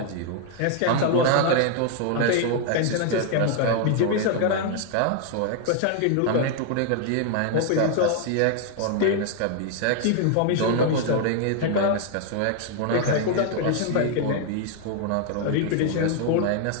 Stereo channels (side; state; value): both; different; correlation 0.00